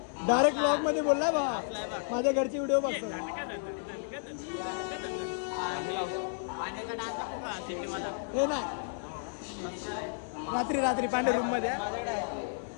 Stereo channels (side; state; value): right; silent; digital silence